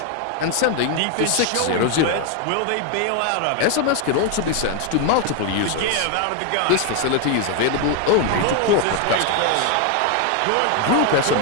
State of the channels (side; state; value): both; different; correlation 0.01